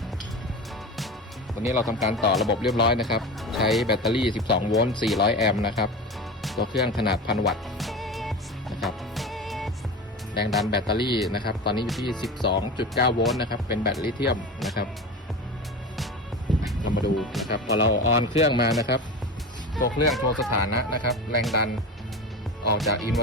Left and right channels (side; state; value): both; normal; correlation 0.28